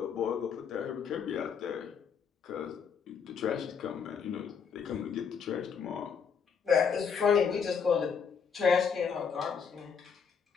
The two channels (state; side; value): quieter; right; 6.6 dB